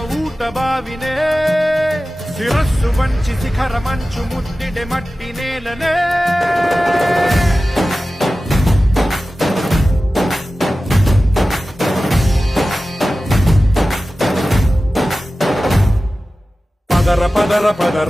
ఊట బావినే శిరస్సు వంచి శిఖర మంచు ముట్టిడే మట్టి నేలనే పదర పదర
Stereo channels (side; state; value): both; normal; correlation 0.95